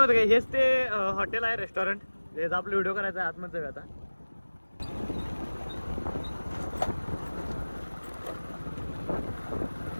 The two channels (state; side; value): inverted; both; correlation -1.00